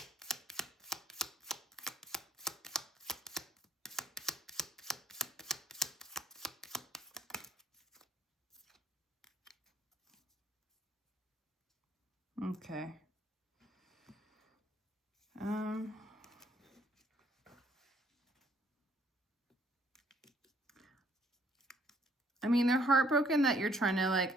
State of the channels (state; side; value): normal; both; correlation 0.64